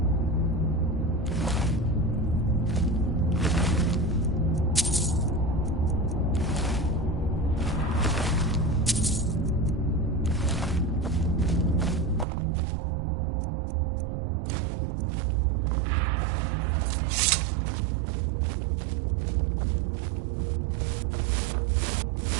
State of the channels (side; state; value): left; drops out; at 12.2 s